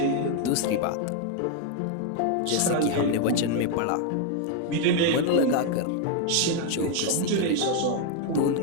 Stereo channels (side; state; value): both; different; correlation 0.01